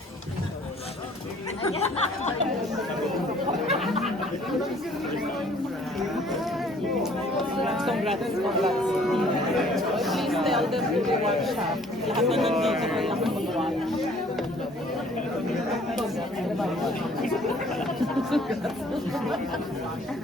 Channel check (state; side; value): normal; both; correlation 0.57